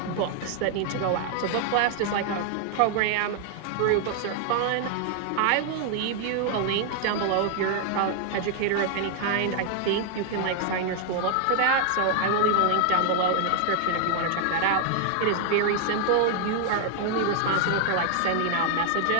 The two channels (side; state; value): both; different; correlation 0.00